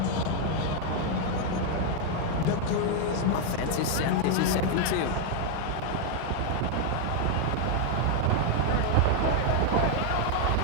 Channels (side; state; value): both; different; correlation 0.01